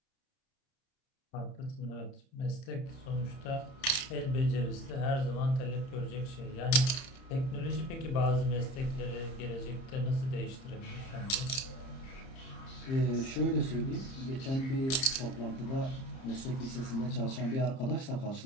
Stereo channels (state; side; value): late; right; 30 ms